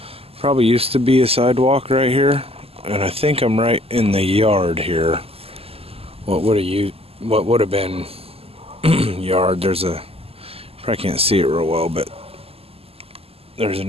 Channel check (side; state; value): left; late; 0.29 ms